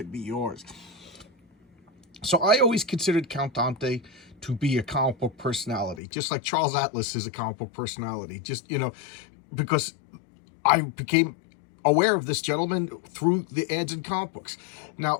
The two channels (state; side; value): drops out; right; at 6.0 s